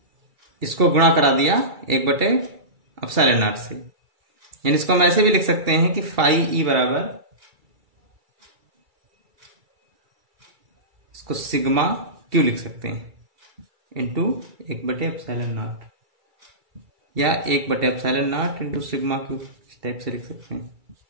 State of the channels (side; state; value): left; late; 2.3 ms